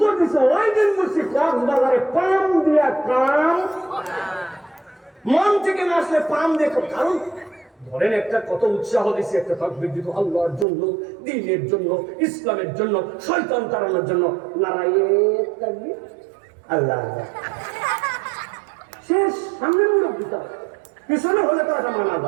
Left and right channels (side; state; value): left; drops out; at 10.7 s